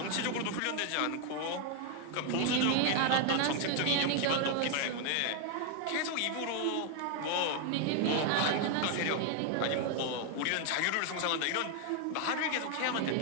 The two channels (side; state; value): both; different; correlation 0.00